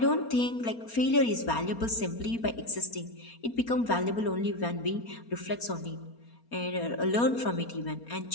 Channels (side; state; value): right; late; 4.3 ms